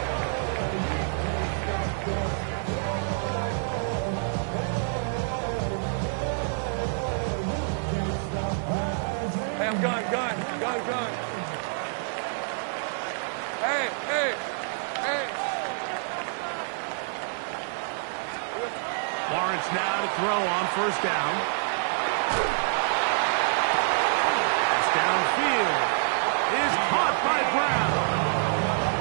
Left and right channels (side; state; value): left; silent; 60 dB below the other